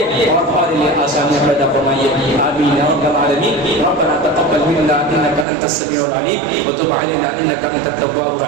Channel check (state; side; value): drops out; left; at 5.5 s